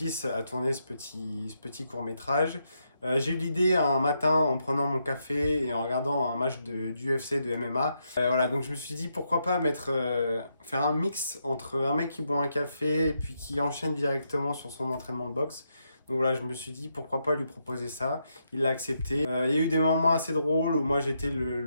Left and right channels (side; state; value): both; inverted; correlation -0.80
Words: à tourner ce petit court-métrage. J'ai eu l'idée un matin en prenant mon café et en regardant un match d'UFC, de MMA. Voilà, donc je me suis dit pourquoi pas faire un mix entre un mec qui boit un café et puis qui enchaîne directement sur son entraînement de boxe. Donc voilà, je me suis dit pourquoi pas lui proposer ça. Il l'a accepté. Il y a eu des moments assez drôles où moi j'étais